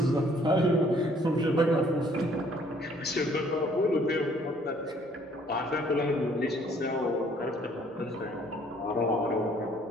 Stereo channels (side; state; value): both; normal; correlation 0.61